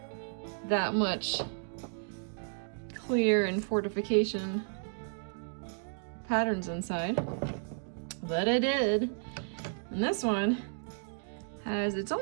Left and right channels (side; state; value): left; silent; digital silence